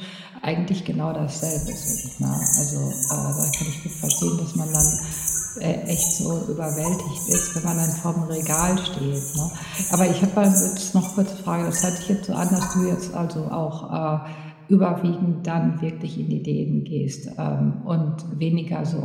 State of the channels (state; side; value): identical; both; correlation 1.00